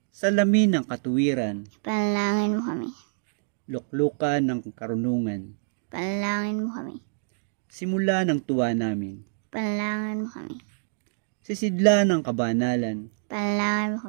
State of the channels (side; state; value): left; silent; digital silence